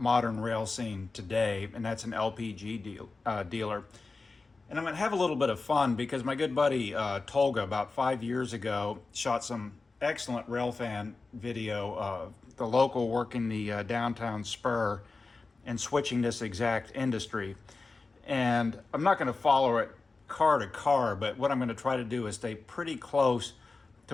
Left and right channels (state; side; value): quieter; right; 3.8 dB